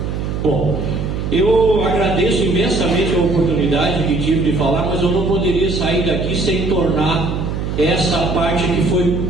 Bom, eu agradeço imensamente a oportunidade que tive de falar, mas eu não poderia sair daqui sem tornar essa parte que foi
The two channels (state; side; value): noise; right; hum, 3 dB below the sound